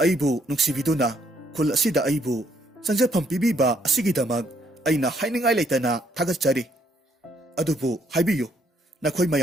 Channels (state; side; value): normal; both; correlation 0.70